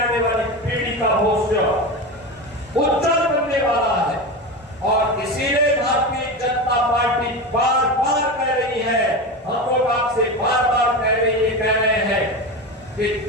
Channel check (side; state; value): both; normal; correlation 0.22